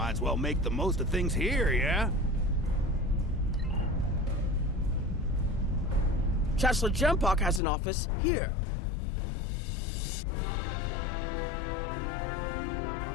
as well make the most of things here, yeah? Chancellor Jempok has an office here.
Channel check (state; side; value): drops out; right; at 7.6 s